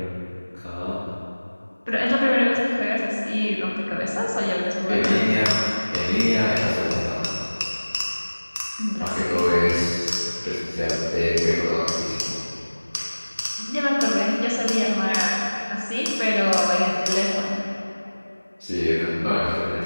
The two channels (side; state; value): both; inverted; correlation -1.00